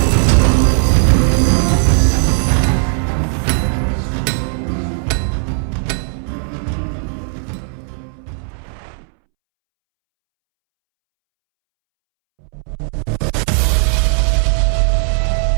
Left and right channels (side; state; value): left; silent; 69 dB below the other